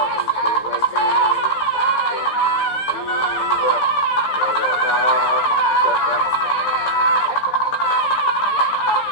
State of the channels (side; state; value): right; late; 15 ms